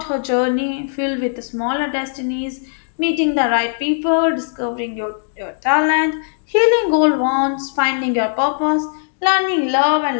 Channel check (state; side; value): silent; right; digital silence